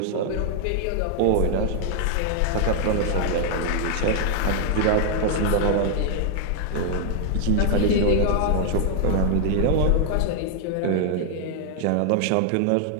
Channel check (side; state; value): both; different; correlation 0.00